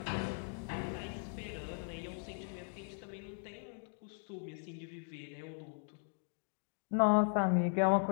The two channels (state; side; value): silent; right; 52 dB below the other